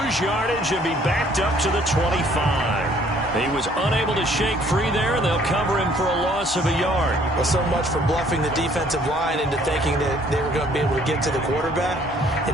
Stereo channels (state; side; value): normal; both; correlation 0.60